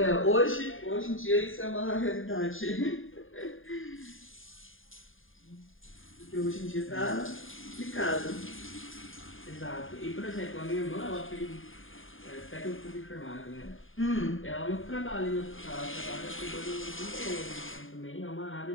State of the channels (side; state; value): right; late; 0.59 ms